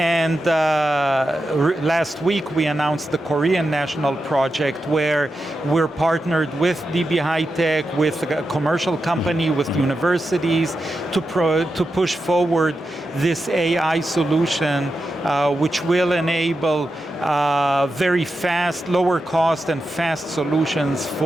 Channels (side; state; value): both; normal; correlation 0.89